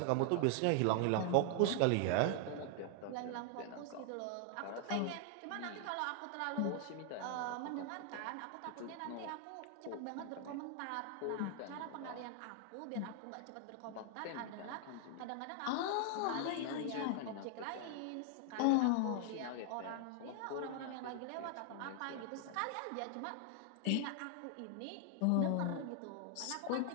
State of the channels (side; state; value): both; different; correlation 0.00